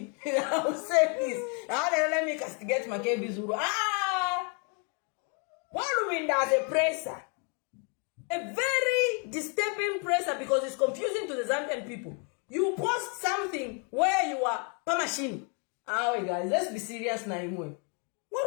will say this. Let me castigate my KB Zulu. Hon Lubinda as a presser. A very disturbing presser because it's confusing to the Zambian people. You post something where you are machine. Wait guys, let's be serious now.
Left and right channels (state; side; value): quieter; right; 37.8 dB